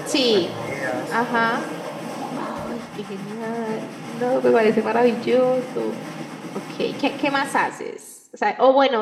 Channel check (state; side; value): identical; both; correlation 1.00